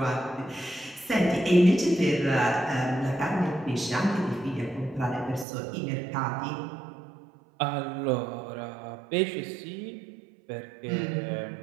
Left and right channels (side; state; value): left; drops out; at 5.5 s